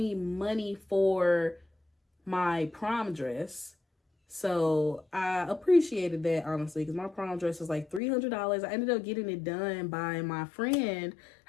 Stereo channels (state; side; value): drops out; right; at 8.0 s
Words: money for my prom dress. So I appreciated that, honestly, because my prom dress was like $300. I ended up getting it done by my friend.